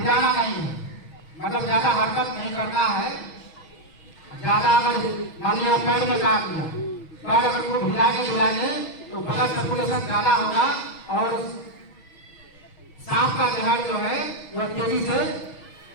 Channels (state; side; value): late; right; 6.2 ms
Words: नहीं है, मतलब ज्यादा हरकत नहीं करना है। ज्यादा अगर मान लिया पैर में काट लिया, पैर अगर को हिलाएंगे तो ब्लड सर्कुलेशन ज्यादा होगा और सांप का जहर जो है वह तेजी से